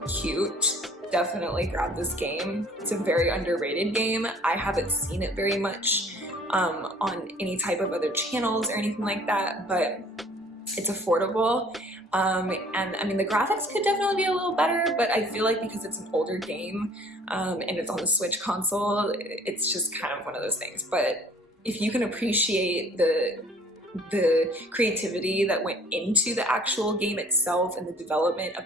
cute, definitely grab this game. It's a very underrated game. I haven't seen it very much on any type of other channels or anything like that, but it's affordable. And I mean, the graphics could definitely be a little better, but I feel like because it's an older game and it's on the Switch console, it's just kind of one of those things. But if you can appreciate the creativity that went into the actual game itself and the development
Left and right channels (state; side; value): normal; both; correlation 0.54